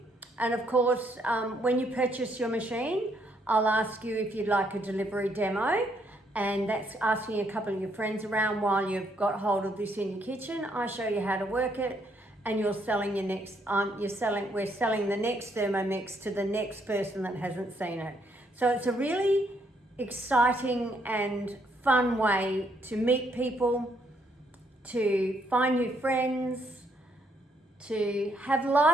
And of course, when you purchase your machine, I'll ask you if you'd like a delivery demo, and that's asking a couple of your friends around while you've got hold of this in your kitchen. I show you how to work it, and you're selling your next. We're selling the next Thermomix to the next person that hasn't seen it. So it's a really exciting and fun way to meet people, to find new friends, to have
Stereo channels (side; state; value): both; normal; correlation 0.72